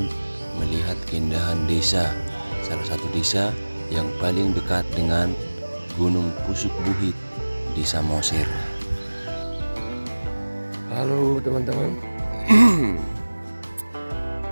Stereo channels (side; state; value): both; inverted; correlation -1.00